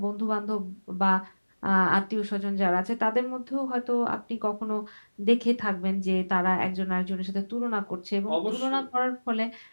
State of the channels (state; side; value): inverted; both; correlation -1.00